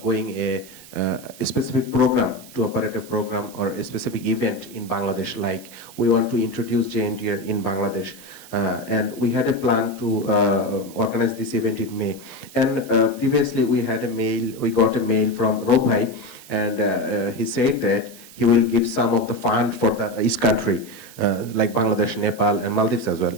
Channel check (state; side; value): noise; right; hiss, 19 dB below the sound